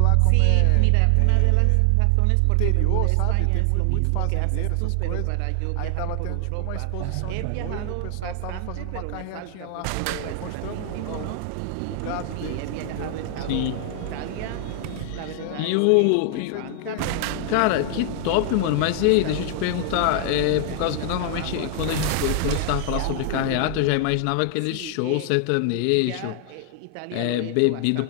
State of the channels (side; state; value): both; different; correlation 0.00